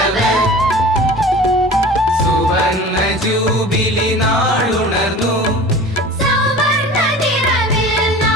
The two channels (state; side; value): normal; both; correlation 0.39